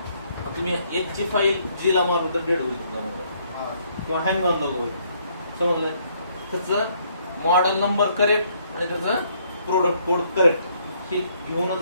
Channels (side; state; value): both; inverted; correlation -0.68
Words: तुम्ही एक ची फाईल G ला मारून तर डेड होईल तुमचा मोबाईल किंवा हँग ऑन नको होईल. समजलं. त्याचं मॉडेल नंबर करेक्ट आणि त्याचं प्रोडक्ट कोड करेक्ट हे घेऊनच